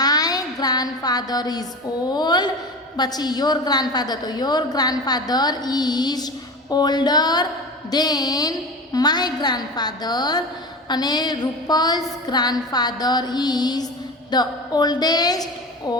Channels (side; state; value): both; normal; correlation 0.31